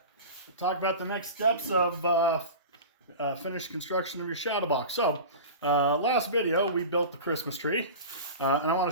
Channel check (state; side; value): inverted; both; correlation -0.32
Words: talk about the next steps of finished construction of your shadow box. So, last video we built the Christmas tree, and I want